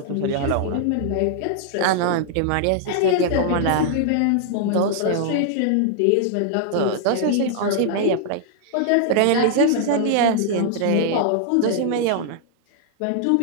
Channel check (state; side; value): different; both; correlation -0.01